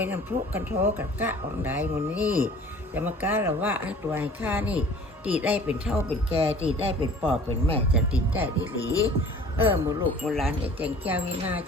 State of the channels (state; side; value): normal; both; correlation 0.47